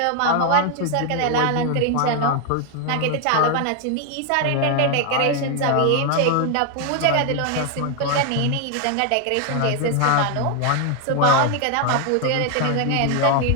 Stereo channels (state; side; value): different; both; correlation 0.01